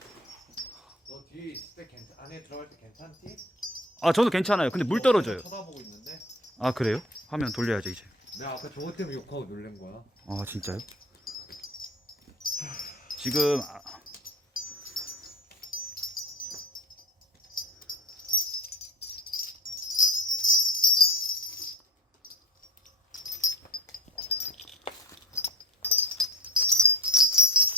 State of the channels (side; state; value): both; normal; correlation 0.37